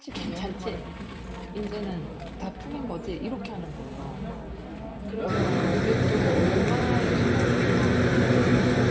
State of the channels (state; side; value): identical; both; correlation 1.00